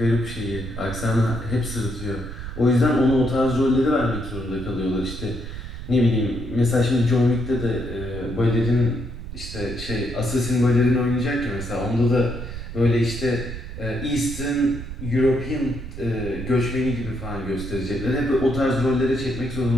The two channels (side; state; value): right; noise; rumble, 9 dB below the sound